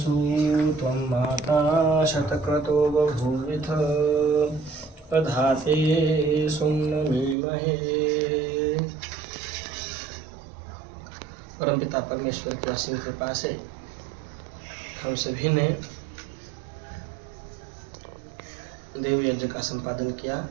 त्वं माता शतक्रतो बभूविथ प्रधाते सुम्नमीमहे। परमपिता परमेश्वर की असीम कृपा से हम सभी ने देव यज्ञ का संपादन किया,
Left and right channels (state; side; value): drops out; left; at 7.4 s